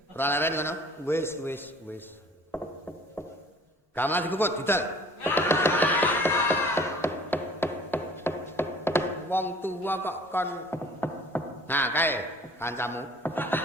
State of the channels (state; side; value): normal; both; correlation 0.50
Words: Ora Leren ngono. Wis. Gamelan dikukut didal. Wong tua kok kon. Nah, kae kancamu.